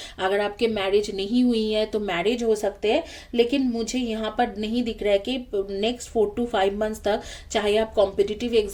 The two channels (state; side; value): identical; both; correlation 1.00